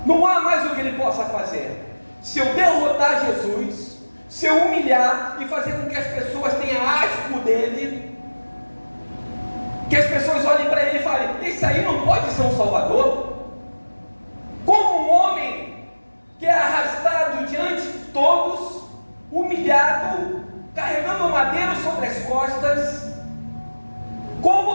Não há mais o que ele possa fazer. Se eu derrotar Jesus, se eu humilhar e fazer com que as pessoas tenham asco dele, que as pessoas olhem para ele e falem: esse aí não pode ser um salvador. Como um homem que é arrastado diante de todos, humilhado, carregando um madeiro sobre as costas,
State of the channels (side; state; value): both; inverted; correlation -1.00